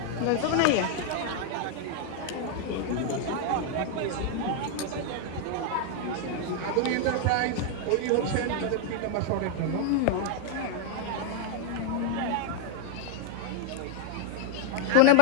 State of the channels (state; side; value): different; both; correlation 0.00